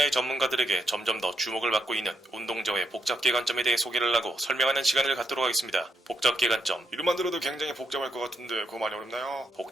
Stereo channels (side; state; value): both; normal; correlation 0.79